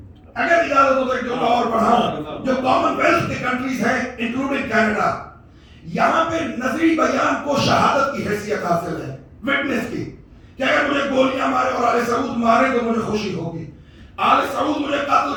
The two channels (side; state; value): both; identical; correlation 1.00